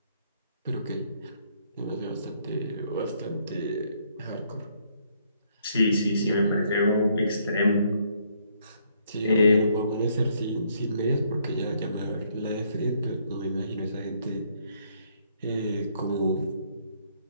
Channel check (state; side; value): inverted; both; correlation -0.69